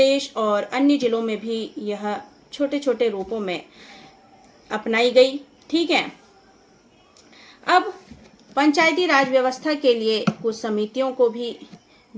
और अन्य जिलों में भी यह छोटे छोटे रूपों में अपनाई गई। ठीक है, अब पंचायती राज व्यवस्था के लिए कुछ समितियों को भी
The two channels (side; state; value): both; identical; correlation 1.00